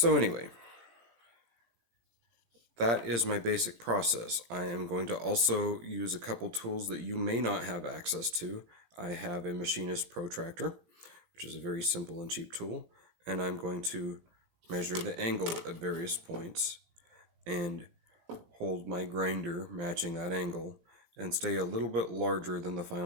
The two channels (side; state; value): left; late; 17 ms